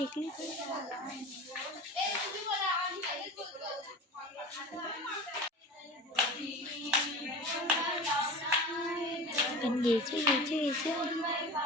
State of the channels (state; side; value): normal; both; correlation 0.34